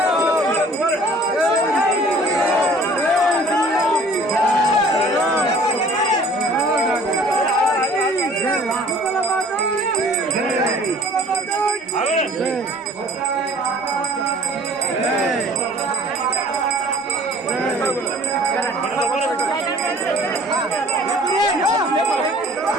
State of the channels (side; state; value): both; normal; correlation 0.51